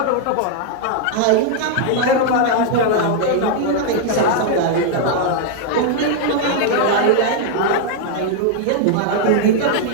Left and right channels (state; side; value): different; both; correlation -0.01